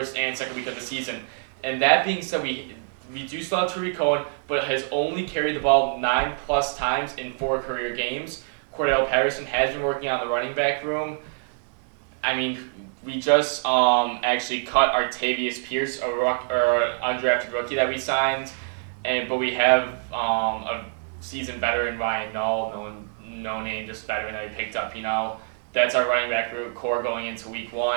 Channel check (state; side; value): silent; left; digital silence